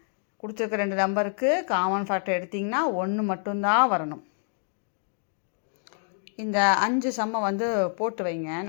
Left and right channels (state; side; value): silent; right; 57 dB below the other